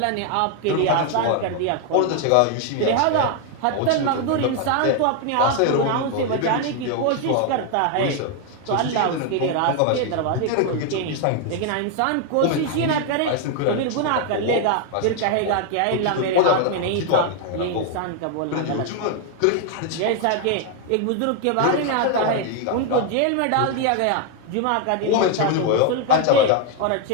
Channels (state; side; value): different; both; correlation 0.00